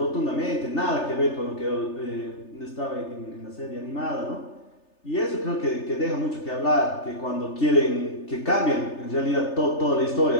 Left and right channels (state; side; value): late; right; 3.3 ms